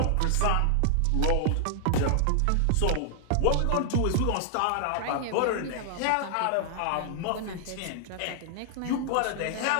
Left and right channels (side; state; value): both; different; correlation 0.00